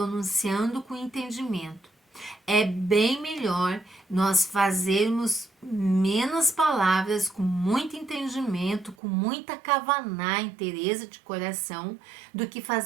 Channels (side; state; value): left; drops out; at 9.0 s